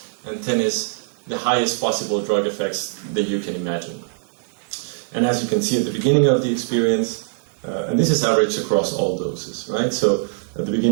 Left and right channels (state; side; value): silent; left; digital silence